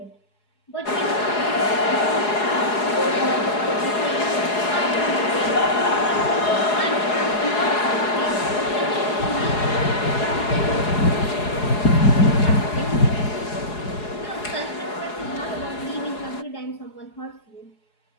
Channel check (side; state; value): right; late; 4.8 ms